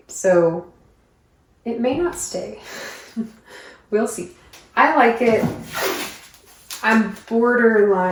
So it may not stay. We'll see. I like it. I'm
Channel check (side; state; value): both; identical; correlation 1.00